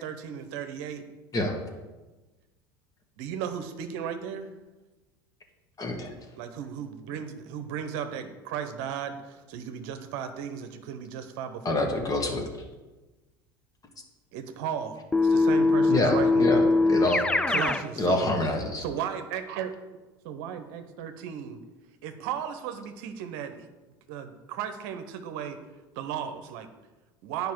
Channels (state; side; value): normal; both; correlation 0.64